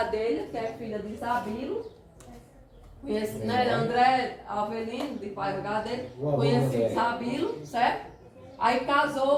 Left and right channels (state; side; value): identical; both; correlation 1.00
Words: que é filha de Isabilo, né, André Avelino, de pai do Gadelha, conheceu Isabilo, certo? Aí